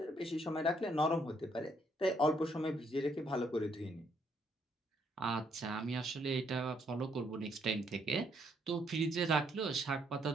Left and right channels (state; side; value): normal; both; correlation 0.71